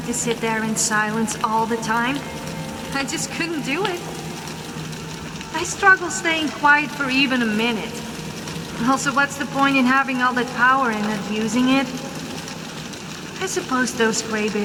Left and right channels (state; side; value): identical; both; correlation 1.00